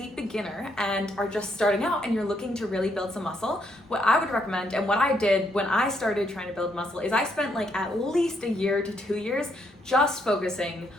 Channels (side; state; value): both; normal; correlation 0.74